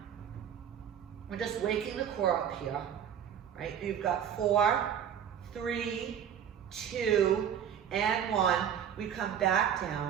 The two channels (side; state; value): left; quieter; 8.8 dB